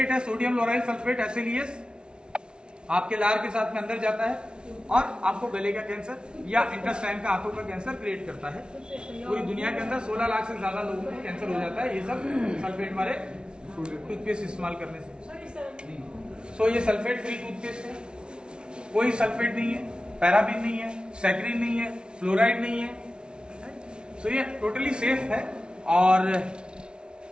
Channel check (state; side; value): late; left; 0.056 ms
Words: है, सोडियम लोराइल सल्फेट, SLES, आपके लार के साथ में अंदर जाता है और आपको गले का कैंसर या इंटेस्टाइन का, आंतों का कैंसर क्रिएट करता है। पूरी दुनिया के अंदर 16 लाख से ज्यादा लोगों को कैंसर हो जाता है, ये सब सल्फेट वाले टूथपेस्ट इस्तेमाल करने से। सो ये सल्फेट फ्री टूथपेस्ट है, कोई सल्फेट नहीं है, पैराबीन नहीं है, सैक्रीन नहीं है, फ्लोराइड नहीं है। सो ये टोटली सेफ है और